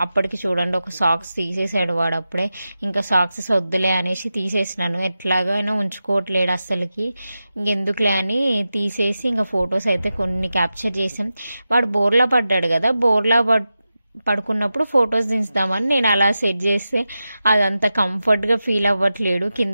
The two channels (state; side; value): inverted; both; correlation -0.92